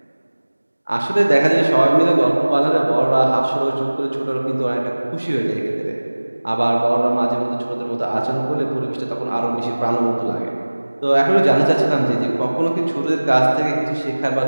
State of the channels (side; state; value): both; inverted; correlation -1.00